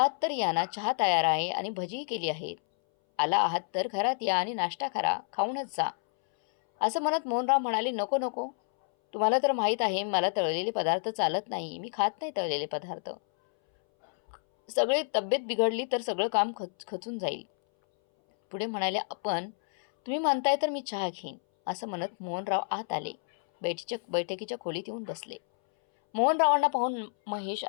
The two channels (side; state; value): right; silent; 58 dB below the other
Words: तर या ना, चहा तयार आहे आणि भजीही केली आहेत. आला आहात तर घरात या आणि नाश्ता करा, खाऊनच जा. असं म्हणत मोहनराव म्हणाले, नको नको, तुम्हाला तर माहीत आहे मला तळलेले पदार्थ चालत नाही. मी खात नाही तळलेले पदार्थ. सगळी तब्येत बिघडली तर सगळं काम खचून जाईल. पुढे म्हणाले, तुम्ही म्हणताय तर मी चहा घेईन. असं म्हणत मोहनराव आत आले. बैठकीच्या खोलीत येऊन बसले. मोहनरावांना पाहून महेश